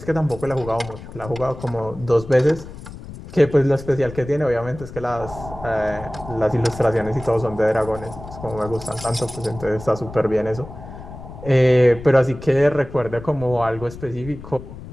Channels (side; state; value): left; noise; rumble, 14 dB below the sound